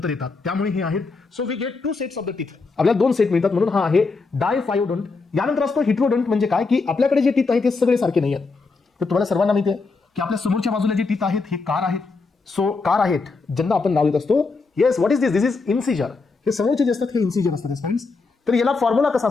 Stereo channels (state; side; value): quieter; right; 4.1 dB